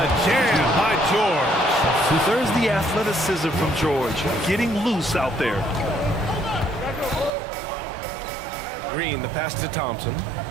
jam by George. There's the athleticism from George, getting loose out there. Green, the pass to Thompson.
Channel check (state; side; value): drops out; left; at 7.3 s